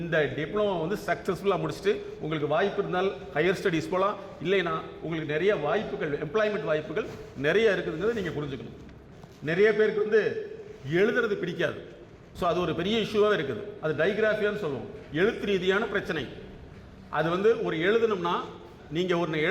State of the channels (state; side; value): identical; both; correlation 1.00